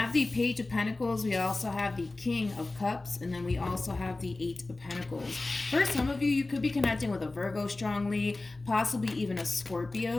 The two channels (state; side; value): quieter; right; 3.1 dB